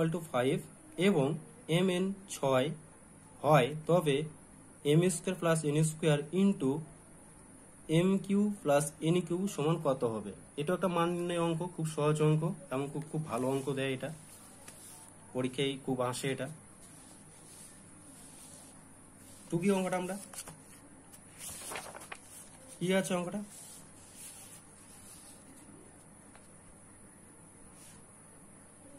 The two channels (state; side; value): identical; both; correlation 1.00